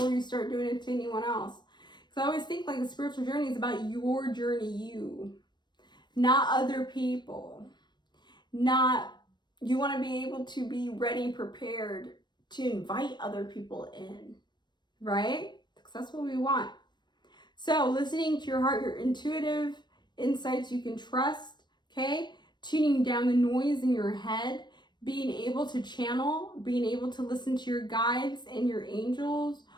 you start doing it to anyone else. Because I always think the spiritual journey is about your journey, you, not other people. You want to be able to be ready, prepared to invite other people in, right? Because that's what we want. So listening to your heart, your intuitive insights you can trust, okay? Tuning down the noise in your head, being able to channel, being able to listen to your guides and your angels,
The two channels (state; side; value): late; right; 0.22 ms